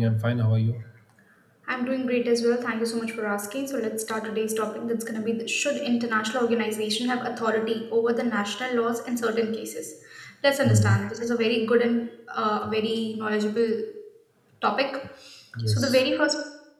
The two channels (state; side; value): identical; both; correlation 1.00